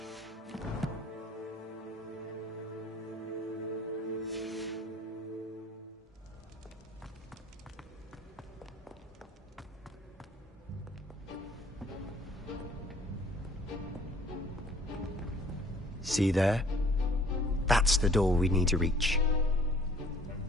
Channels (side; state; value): both; normal; correlation 0.56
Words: See there? That's the door we need to reach.